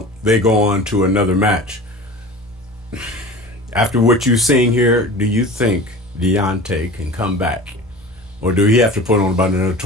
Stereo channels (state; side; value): normal; both; correlation 0.37